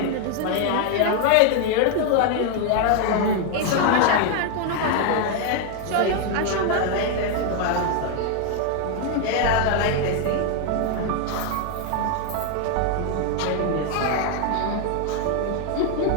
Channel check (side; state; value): both; different; correlation 0.01